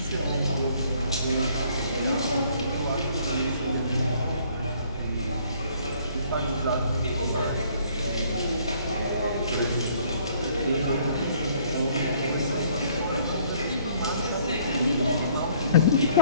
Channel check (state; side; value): inverted; both; correlation -0.61